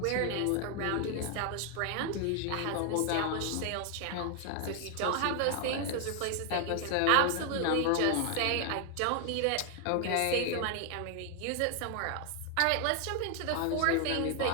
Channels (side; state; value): both; different; correlation 0.01